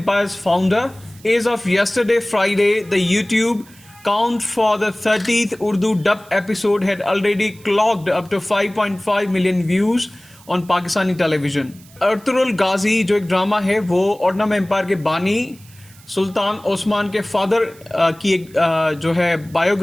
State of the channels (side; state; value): right; noise; hiss, 25 dB below the sound